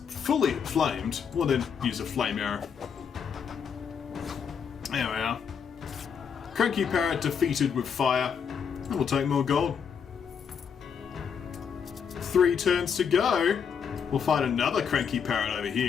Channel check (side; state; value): right; quieter; 7.0 dB